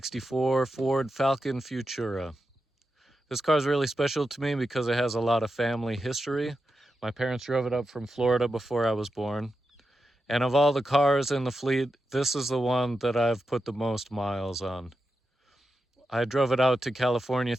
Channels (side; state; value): both; normal; correlation 0.89